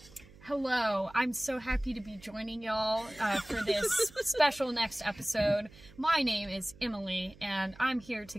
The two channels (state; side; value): noise; right; hum, 22 dB below the sound